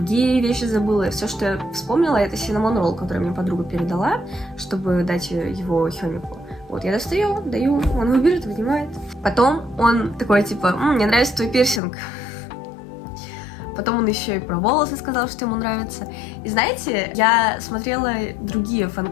вещи забыла. Все, что я вспомнила, это cinnamon roll, который мне подруга передала, чтобы дать его Хёмику. Вот, я достаю, даю, он его берет, вынимает. Потом он такой, типа, мне нравится твой пирсинг. Потом он еще и про волосы сказал, что ему нравится. И знаете, я смотрела другие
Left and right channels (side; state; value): right; drops out; at 11.8 s